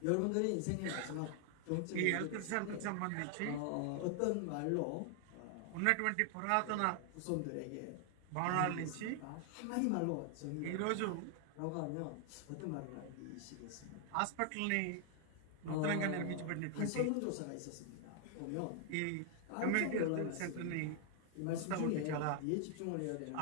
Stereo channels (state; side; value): different; both; correlation 0.00